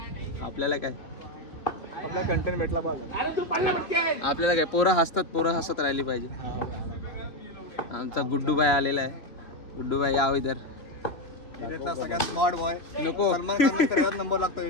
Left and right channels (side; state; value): right; late; 3.1 ms